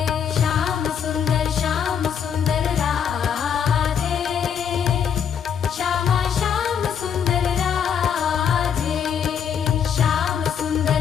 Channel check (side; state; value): right; quieter; 7.9 dB